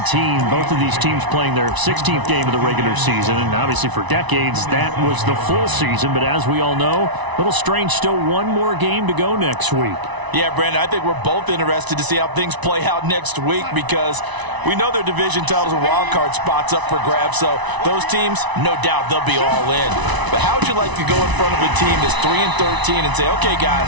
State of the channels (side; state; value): left; late; 1.0 ms